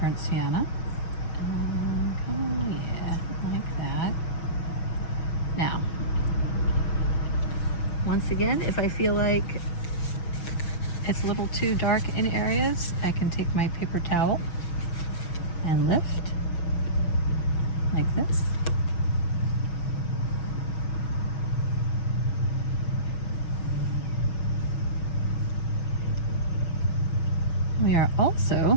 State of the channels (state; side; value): late; right; 6.2 ms